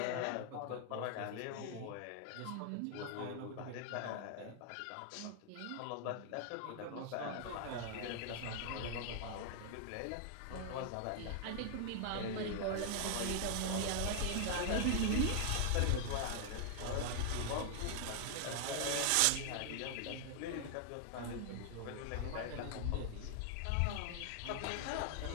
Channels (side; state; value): both; different; correlation 0.00